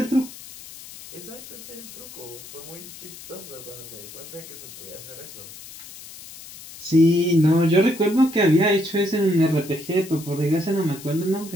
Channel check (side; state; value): left; noise; hiss, 16 dB below the sound